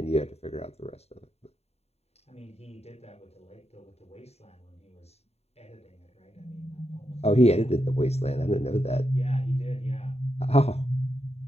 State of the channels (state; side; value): late; right; 0.30 ms